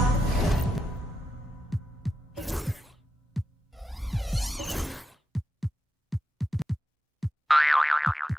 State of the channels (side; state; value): both; normal; correlation 0.87